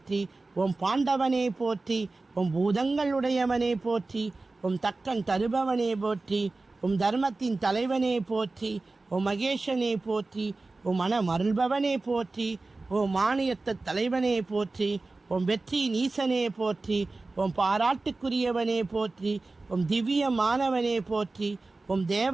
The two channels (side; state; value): left; quieter; 3.4 dB